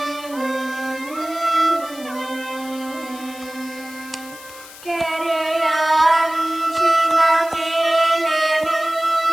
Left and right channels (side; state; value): left; noise; hiss, 17 dB below the sound